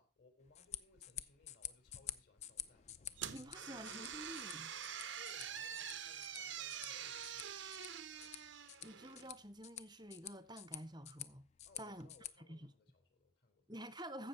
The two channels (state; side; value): normal; both; correlation 0.14